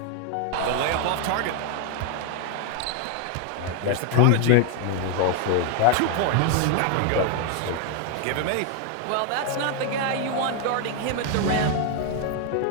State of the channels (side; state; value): both; different; correlation 0.01